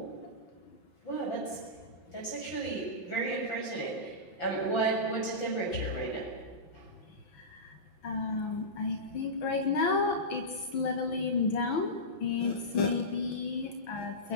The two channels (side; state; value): right; late; 5.8 ms